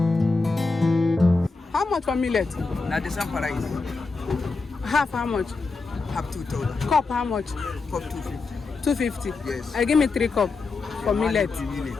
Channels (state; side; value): quieter; right; 3.9 dB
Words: How much for millet? Now the same price. Half how much? Have 2,000. Cup how much? Cup 250. 250. Yes. Give me 3 cup for millet.